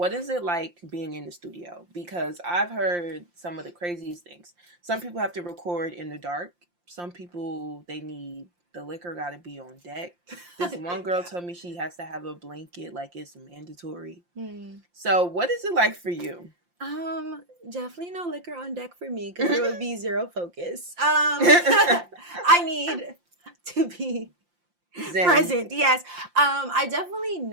is it like being in the studio? Because I've heard some of the craziest things. Some people have to record in the dark, some people, they need the liquor got to be on deck. This one girl told me she has to have a blanket, like it's mandatory. So what is it like for you? Definitely no liquor on deck for me because there would be zero focus. I need to be present. Yes. I definitely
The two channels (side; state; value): left; late; 5.7 ms